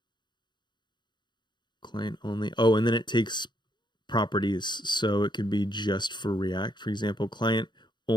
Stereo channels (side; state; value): right; late; 0.22 ms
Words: Client only. Oh, and then it takes properties, so it could be just for React. For example, client